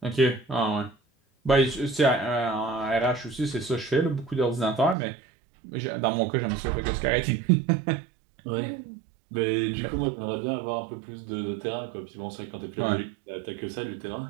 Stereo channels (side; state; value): left; drops out; at 5.0 s